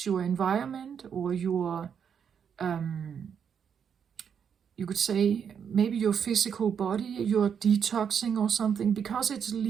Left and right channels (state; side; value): quieter; left; 7.5 dB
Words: environment, or your, you could say, maybe your physical body, you're detoxing or something, because it's